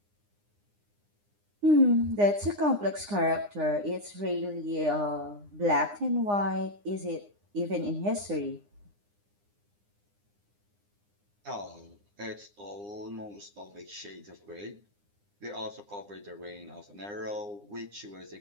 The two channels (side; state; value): left; late; 9.8 ms